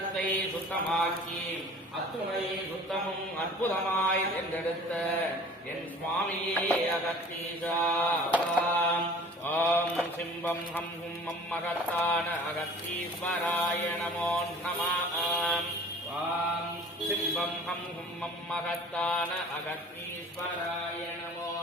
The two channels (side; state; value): both; normal; correlation 0.46